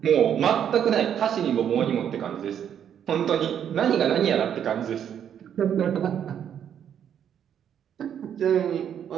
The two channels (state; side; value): quieter; left; 9.1 dB